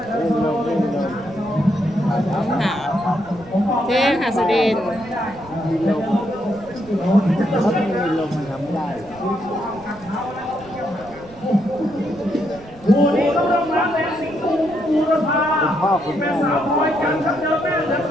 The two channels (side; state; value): right; noise; rumble, 21 dB below the sound